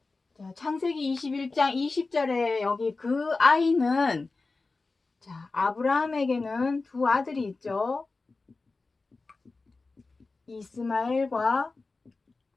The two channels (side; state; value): right; quieter; 3.7 dB